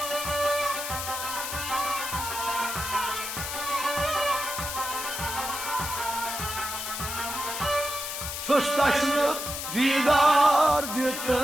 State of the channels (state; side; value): noise; left; hiss, 5 dB below the sound